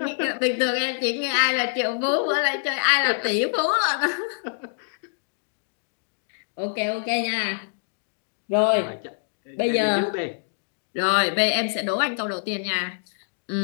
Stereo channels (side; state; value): right; silent; digital silence